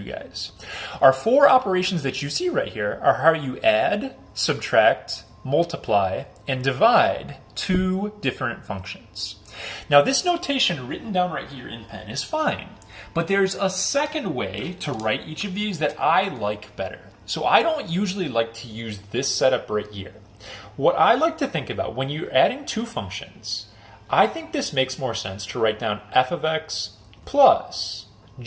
guys. Our 4 operations that you see right here are how you add, subtract, multiply, and divide 2 different functions. Now this notation written down right here in pen is fine, but there's a second way to write each of these that I like better. So I don't usually like to use this setup right here. What I like to think about when you're adding 2 functions, I think this makes more sense to write down f of x plus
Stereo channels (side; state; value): both; identical; correlation 1.00